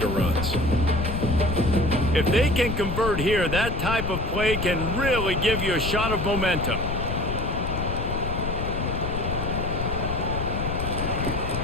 runs. If they can convert here, that type of play can really give you a shot of momentum.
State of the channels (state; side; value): noise; left; rumble, 3 dB below the sound